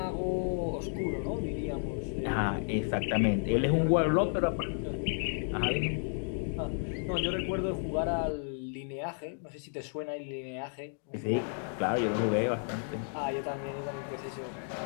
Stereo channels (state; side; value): silent; right; 56 dB below the other